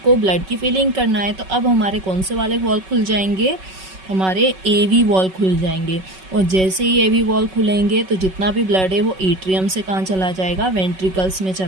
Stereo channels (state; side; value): late; left; 5.3 ms